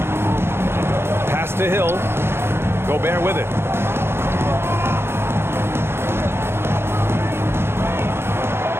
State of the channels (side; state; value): left; late; 0.12 ms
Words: Pass to Hill. Gobert with it.